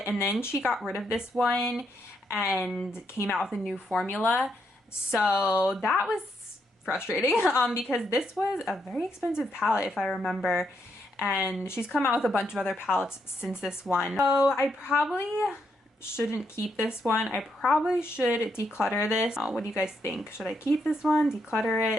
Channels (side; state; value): both; normal; correlation 0.78